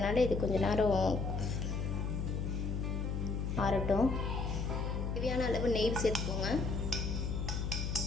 இது கொஞ்ச நேரம் ஆறட்டும். தேவையான அளவு நெய் சேர்த்துக்கோங்க.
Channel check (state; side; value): noise; left; hum, 1 dB below the sound